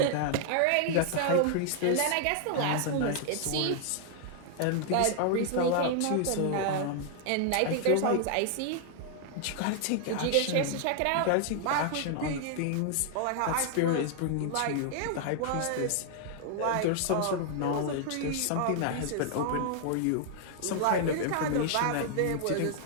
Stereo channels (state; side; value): different; both; correlation 0.00